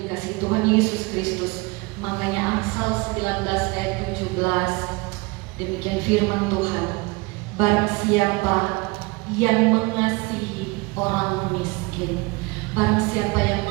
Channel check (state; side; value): quieter; left; 25.7 dB